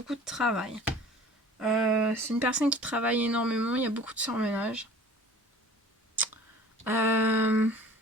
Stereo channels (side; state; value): both; normal; correlation 0.46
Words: de travail. C'est une personne qui travaille énormément, il y a beaucoup de surmenage.